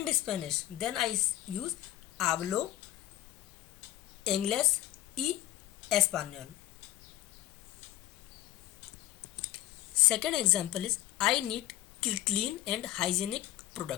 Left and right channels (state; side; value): quieter; right; 14.2 dB